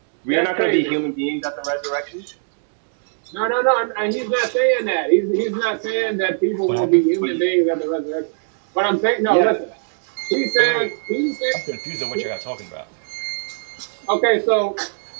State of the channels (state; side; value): silent; left; digital silence